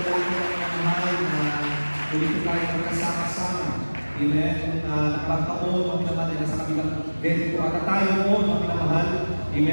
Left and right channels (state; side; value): inverted; both; correlation -1.00